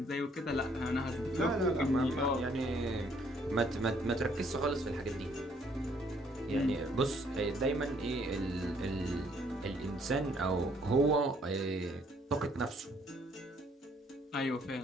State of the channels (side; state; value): both; normal; correlation 0.64